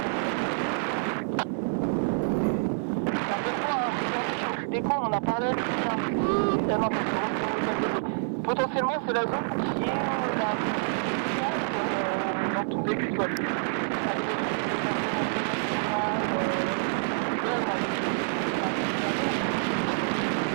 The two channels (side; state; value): left; silent; 60 dB below the other